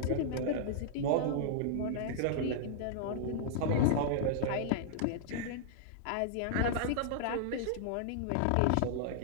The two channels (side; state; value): both; different; correlation -0.01